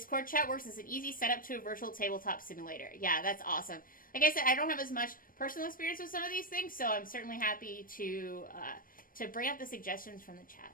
chat works as an easy setup to a virtual tabletop simulator. Yeah, that's awesome. Like I said, I don't have as much personal experience with some of these things, so I'm certainly happy to bring up the suggestions from the chat.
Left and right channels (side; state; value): right; late; 0.41 ms